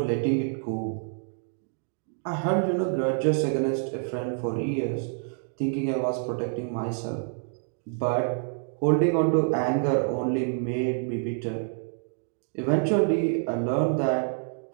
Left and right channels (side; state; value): left; silent; digital silence